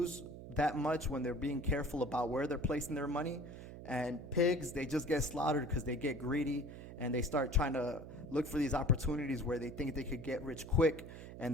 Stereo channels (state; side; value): noise; right; hum, 12 dB below the sound